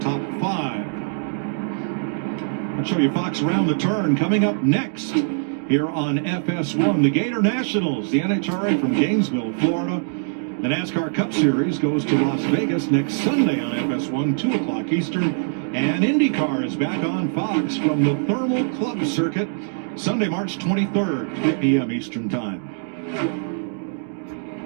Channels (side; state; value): left; silent; digital silence